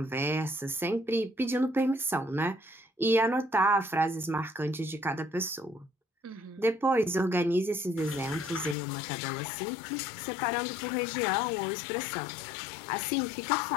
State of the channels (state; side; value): drops out; right; at 8.8 s